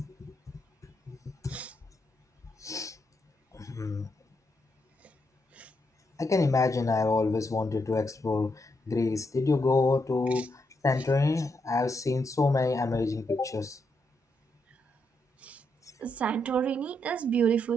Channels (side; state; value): both; normal; correlation 0.80